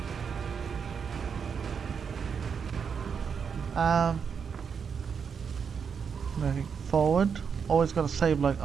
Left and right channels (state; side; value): quieter; left; 6.5 dB